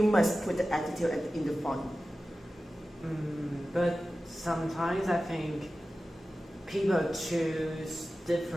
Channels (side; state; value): both; normal; correlation 0.95